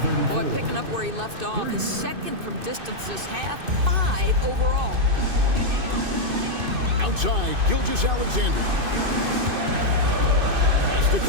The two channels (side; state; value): left; late; 2.6 ms